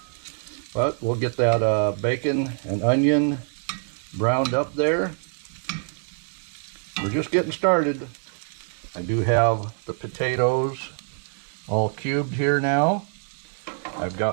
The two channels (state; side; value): silent; left; 62 dB below the other